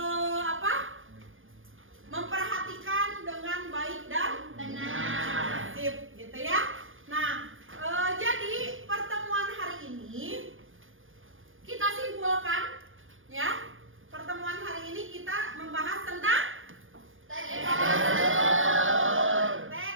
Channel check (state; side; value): late; left; 0.58 ms